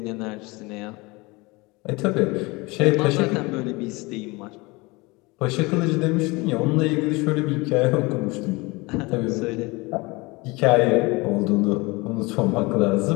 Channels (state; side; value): quieter; right; 24.5 dB